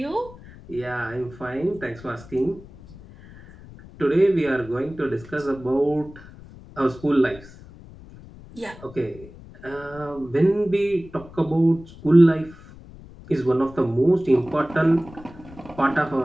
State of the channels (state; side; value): noise; left; rumble, 19 dB below the sound